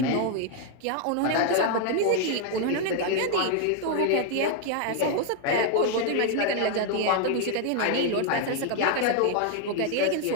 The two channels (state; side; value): different; both; correlation 0.00